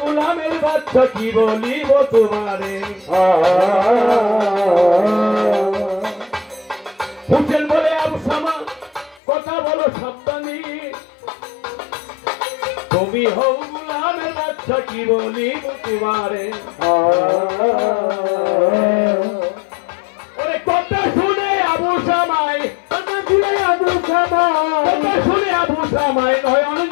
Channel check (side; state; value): right; drops out; at 9.2 s